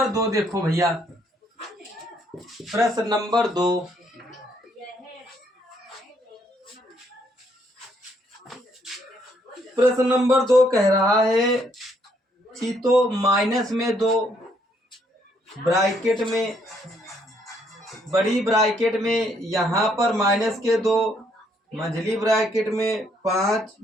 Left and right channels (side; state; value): both; normal; correlation 0.70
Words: 2 देखो भैया। प्रश्न नंबर 2, प्रश्न नंबर 2 कह रहा है तो माइनस में 2, ब्रैकेट में, बड़ी ब्रैकेट में यहाँ पर माइनस के 2, मंझली ब्रैकेट में 5,